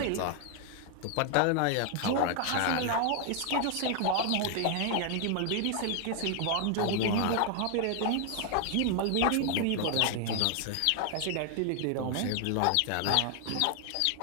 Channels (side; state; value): both; different; correlation 0.00